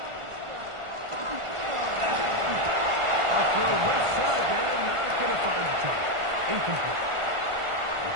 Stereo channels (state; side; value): late; left; 1.5 ms